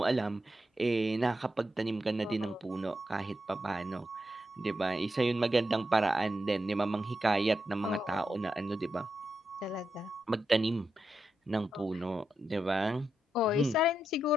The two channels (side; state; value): both; normal; correlation 0.86